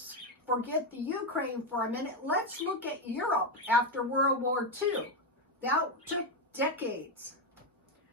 forget the Ukraine for a minute. Let's look at Europe after World War II. That took decades.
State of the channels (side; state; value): both; normal; correlation 0.08